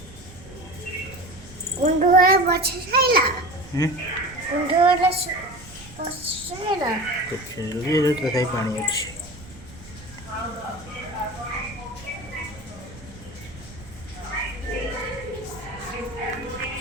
कुंडोरा बचैला कुंडोरा बचैला कुछ ये तो कहीं पानी अच्छी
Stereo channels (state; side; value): noise; right; rumble, 18 dB below the sound